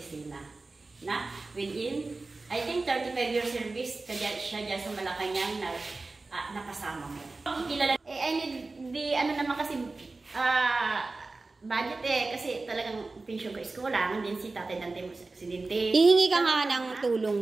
Na within, I think 35 years service, kaya siya dyan sa Malacanang na nakasama mo. I need the, naman kasi, budget kasi talagang pension ko is kulang. Din si Tatay Dante mo sa aksidente. Hihingi ka nga ng tulong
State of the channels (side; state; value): left; quieter; 3.5 dB